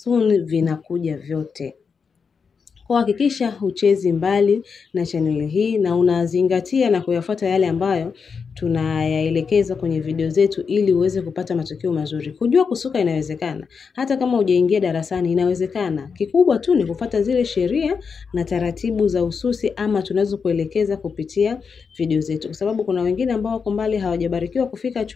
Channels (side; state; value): right; quieter; 5.7 dB